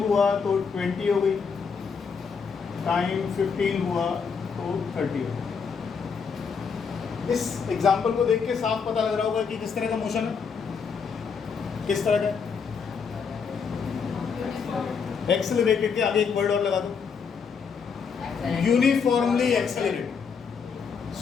तो 20 हो गई। टाइम 15 हुआ तो 30 हो गई। इस एग्जाम्पल को देख के साफ पता लग रहा होगा कि किस तरह का मोशन है, किस तरह का। एक्सेलरेटेड के आगे एक वर्ड और लगा दो, यूनिफॉर्मली एक्सेलरेटेड।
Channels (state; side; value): quieter; right; 5.9 dB